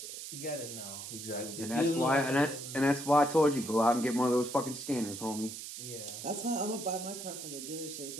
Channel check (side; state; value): right; noise; hiss, 9 dB below the sound